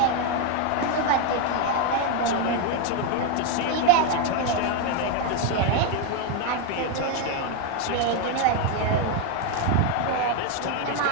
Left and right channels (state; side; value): different; both; correlation 0.01